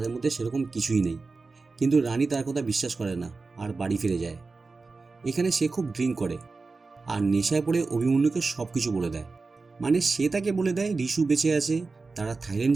মধ্যে সেরকম কিছুই নেই। কিন্তু রানী তার কথা বিশ্বাস করে না আর বাড়ি ফিরে যায়। এখানে সে খুব ড্রিঙ্ক করে আর নেশায় পড়ে অভিমন্যুকে সব কিছু বলে দেয়। মানে সে তাকে বলে দেয় ঋষু বেঁচে আছে, তারা থাইল্যান্ড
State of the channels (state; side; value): quieter; left; 4.0 dB